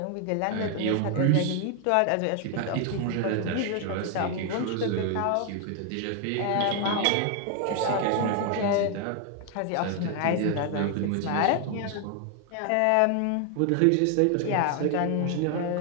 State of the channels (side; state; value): both; different; correlation 0.00